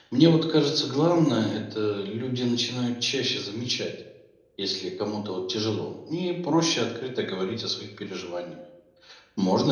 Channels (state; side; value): identical; both; correlation 1.00